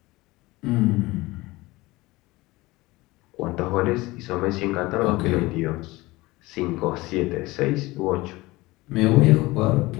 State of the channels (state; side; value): quieter; right; 20.6 dB